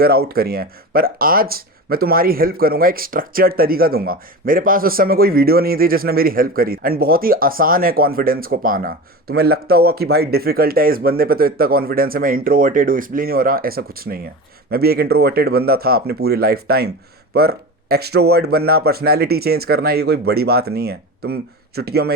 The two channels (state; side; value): normal; both; correlation 0.28